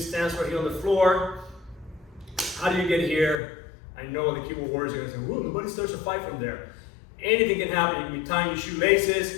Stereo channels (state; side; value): drops out; right; at 3.4 s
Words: right here on the floor. How do you get here? I know the keyboard warriors are going to say, "Whoa, nobody starts a fight from there." Anything can happen. You can be tying your